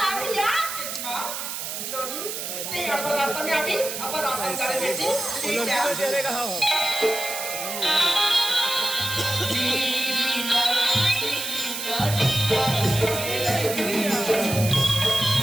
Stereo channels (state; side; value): noise; right; hiss, 5 dB below the sound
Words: है यार मां लोनी नहीं अपन रास्ता में अभी अपन रास्ता में चले बेटी तेरे कहा हो